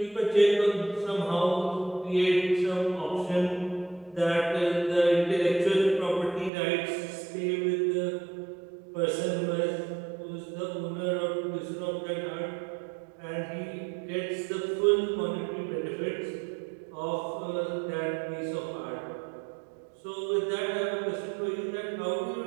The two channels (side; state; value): left; drops out; at 6.5 s